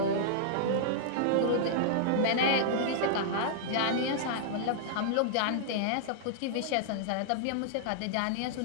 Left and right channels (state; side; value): different; both; correlation -0.02